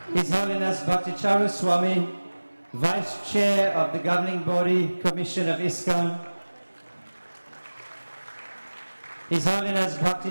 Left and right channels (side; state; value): both; inverted; correlation -1.00